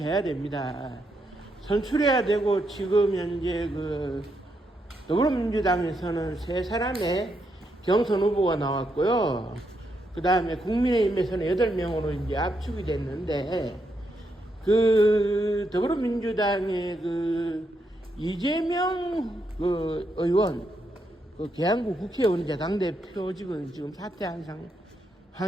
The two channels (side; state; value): both; normal; correlation 0.80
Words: 됩니다. 선출해야 되고 지금 현재 더불어민주당에서는 세 사람의 경선 후보가 나왔고요. 그 다음에 국민의힘에서는 8명으로 이제 압축이 됐는데, 더불어민주당의 이재명 의원, 계양구 국회의원 당대표직은 지금 사퇴한